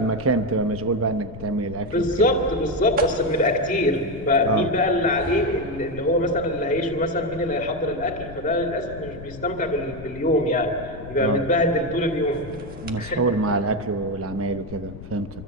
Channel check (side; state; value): left; noise; rumble, 14 dB below the sound